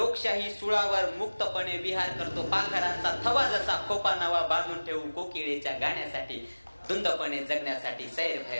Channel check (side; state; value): both; inverted; correlation -1.00